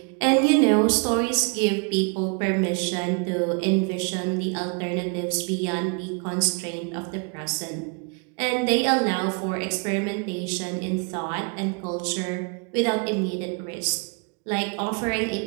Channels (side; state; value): left; quieter; 35.7 dB